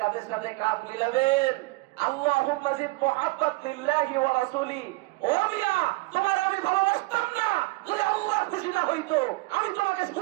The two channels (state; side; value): quieter; left; 23.2 dB